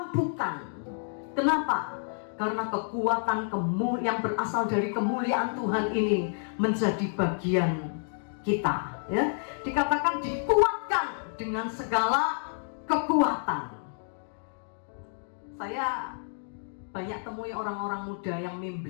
Kenapa? Karena kekuatan yang berasal dari kemuliaan Tuhan ini menjadi bagian kita, ya. Dikatakan dikuatkan dengan segala kekuatan. Saya banyak temui orang-orang muda yang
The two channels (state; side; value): silent; right; digital silence